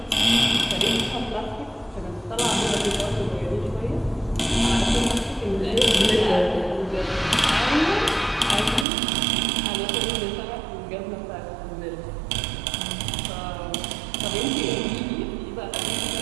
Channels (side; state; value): left; drops out; at 8.8 s